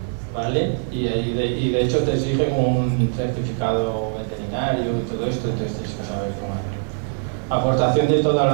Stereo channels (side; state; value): left; silent; digital silence